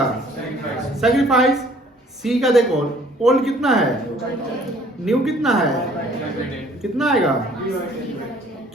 सैक्रिफाइस। सी का देखो ओल्ड कितना है, न्यू कितना है, कितना आएगा?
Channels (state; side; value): normal; both; correlation 0.57